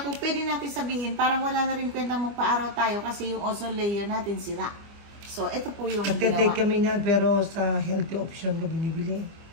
kung pwede natin sabihin, parang wala na rin kwenta magpa-araw tayo kasi yung ozone layer natin sira. So, ito po yung ginawa. Nagtitake kami nga, pero sa healthy option ko binibili.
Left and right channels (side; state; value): left; late; 25 ms